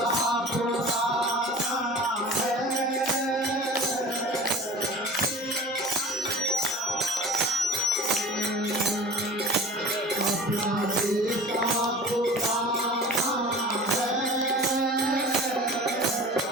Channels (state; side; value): normal; both; correlation 0.39